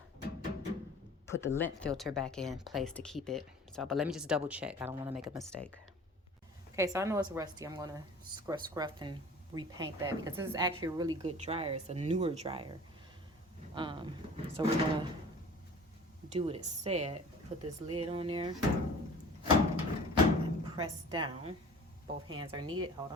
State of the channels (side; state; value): both; normal; correlation 0.44